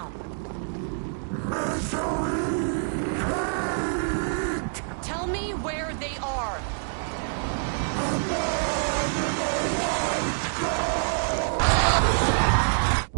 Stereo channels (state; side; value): silent; left; digital silence